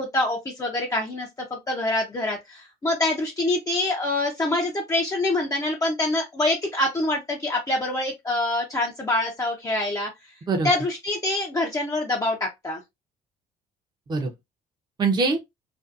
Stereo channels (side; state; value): both; normal; correlation 0.42